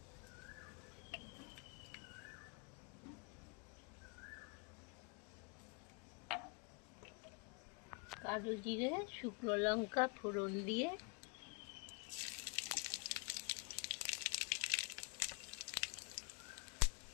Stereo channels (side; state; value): right; quieter; 34.7 dB